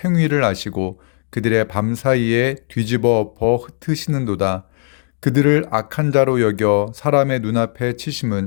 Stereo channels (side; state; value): right; silent; digital silence